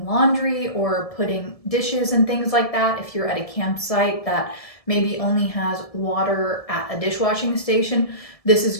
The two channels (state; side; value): late; right; 1.7 ms